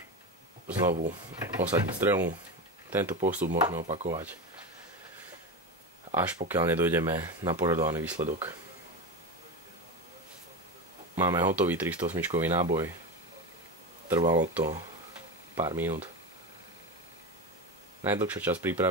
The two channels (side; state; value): both; normal; correlation 0.20